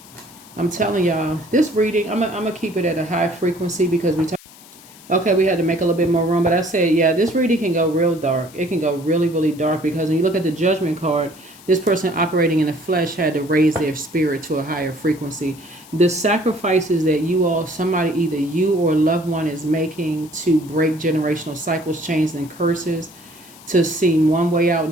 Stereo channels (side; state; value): left; noise; hiss, 22 dB below the sound